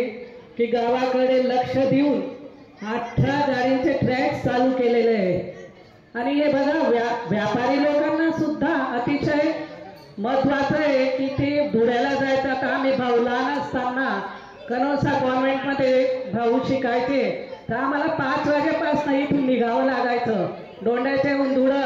की गावाकडे लक्ष देऊन 18 गाडींचे ट्रॅक चालू केलेले आहे आणि हे बघा व्यापारी लोकांना सुद्धा अतिशय महत्त्वाचं आहे की ते धुळ्याला जायचं। आता आम्ही भाऊ लहान असताना कनोसा कॉन्व्हेंटमध्ये भाऊ शिकायचे तर आम्हाला 5 वाजेपासून इथून निघावं लागायचं, दोंड्याच्याहून धुळं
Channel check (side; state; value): both; identical; correlation 1.00